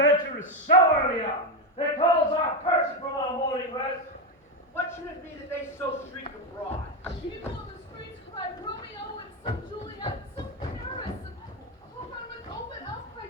is so early on that calls our person from our morning rest? What should it be that they so shriek abroad? People in the streets cry Romeo and some Juliet and some Paris, and hope I would open up by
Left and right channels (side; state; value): both; normal; correlation 0.09